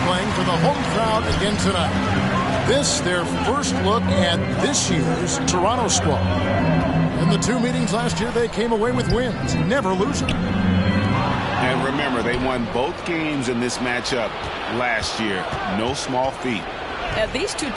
for the home crowd again tonight. This, their first look at this year's Toronto squad. In the two meetings last year, they came away with wins, never losing. And remember, they won both games in this matchup last year. No small feat. These two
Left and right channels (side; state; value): both; identical; correlation 1.00